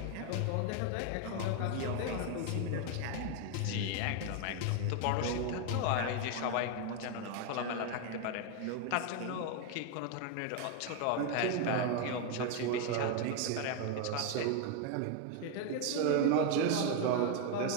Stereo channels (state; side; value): different; both; correlation 0.01